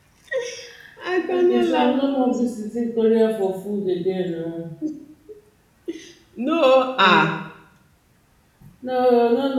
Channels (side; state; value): both; identical; correlation 1.00